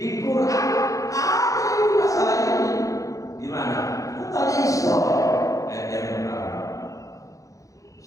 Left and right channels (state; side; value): late; right; 0.16 ms